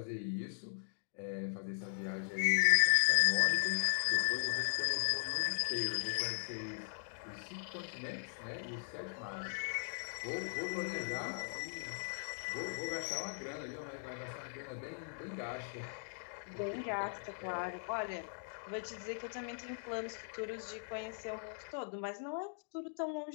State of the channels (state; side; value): silent; right; digital silence